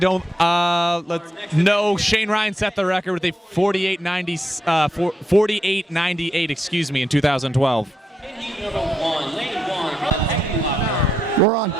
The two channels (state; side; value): normal; both; correlation 0.82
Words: No, Shane Ryan set the record with a 48.98. Excuse me, in 2012. We're on.